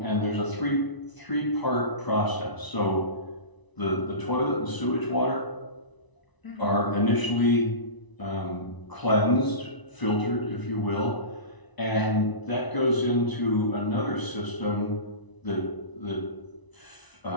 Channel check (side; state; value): right; late; 1.0 ms